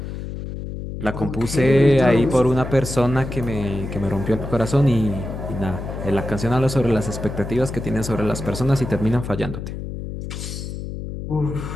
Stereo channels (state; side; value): noise; left; hum, 7 dB below the sound